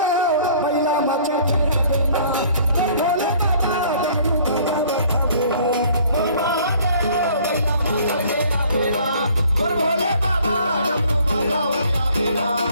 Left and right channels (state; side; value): inverted; both; correlation -0.56